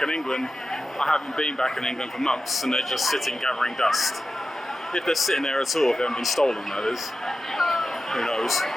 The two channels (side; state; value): both; normal; correlation 0.93